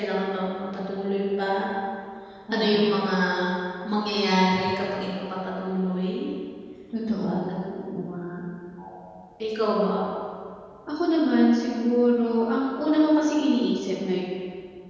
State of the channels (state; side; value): identical; both; correlation 1.00